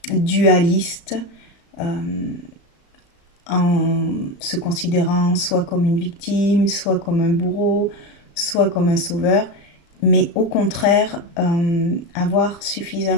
dualiste, en se considérant soit comme une victime, soit comme un bourreau, soit comme un sauveur, mais au contraire, avoir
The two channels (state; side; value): late; right; 35 ms